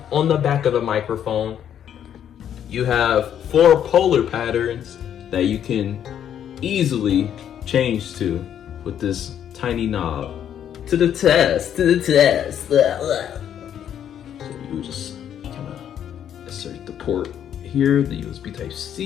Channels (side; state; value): right; quieter; 9.6 dB